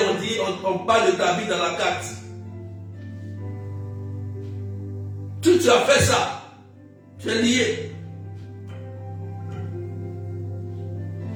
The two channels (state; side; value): identical; both; correlation 1.00